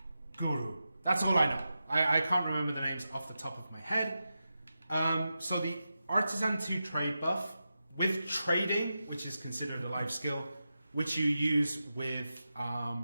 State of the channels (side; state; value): both; inverted; correlation -0.90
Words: guru. That's all I know. I can't remember the names off the top of my head. So the Artisan 2 trade buff with trading, which is considered a life skill, which you use with,